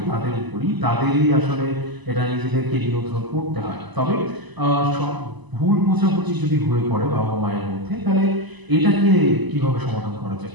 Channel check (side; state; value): left; late; 1.0 ms